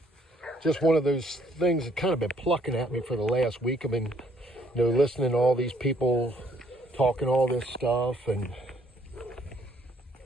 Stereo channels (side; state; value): both; normal; correlation 0.66